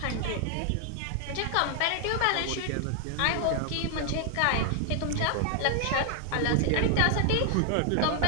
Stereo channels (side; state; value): both; different; correlation 0.00